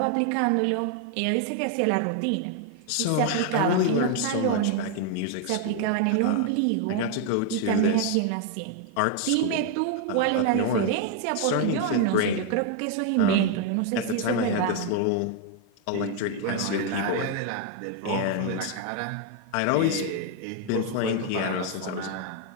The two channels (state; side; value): different; both; correlation 0.00